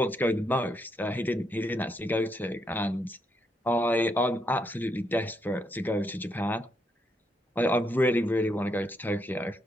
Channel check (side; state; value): both; normal; correlation 0.77